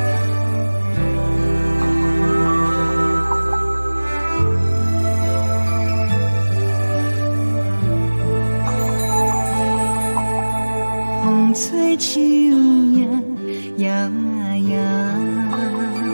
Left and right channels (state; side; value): inverted; both; correlation -1.00